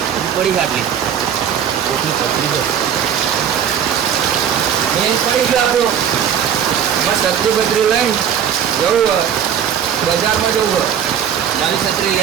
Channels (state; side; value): quieter; left; 8.7 dB